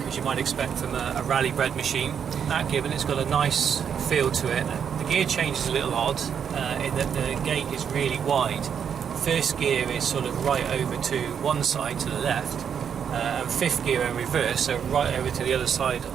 as you might expect from a rally bred machine. That given, it's got a nice feel to it. The gear change is a little odd in that the gate is really wide. First gear is sort of right over to one side to the left, and fifth gear in reverse, so right over to the other side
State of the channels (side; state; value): left; quieter; 7.7 dB